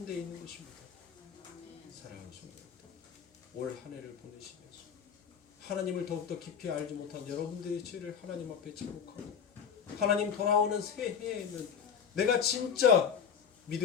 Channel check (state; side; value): quieter; right; 7.3 dB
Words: 데 있는 것입니다. 사랑하는 성도들, 올 한 해를 보내시면서 하나님을 더욱더 깊이 알지 못한 여러분들의 죄를 하나님 앞에 제목하고 하나님 돌아오는 새해에는 내가 진짜